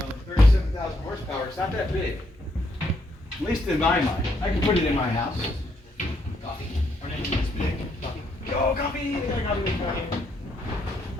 37,000 horsepower, it's not that big. At least in my mind. I can put it in my house. Coffee. Our name is big. Coffee. Yo, coffee! They got coffee.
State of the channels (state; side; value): normal; both; correlation 0.75